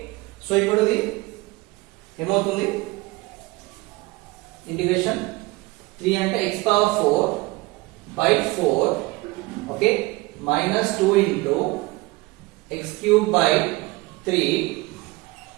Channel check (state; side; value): quieter; left; 22.2 dB